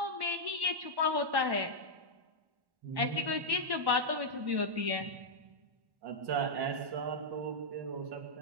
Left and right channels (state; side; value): late; left; 1.1 ms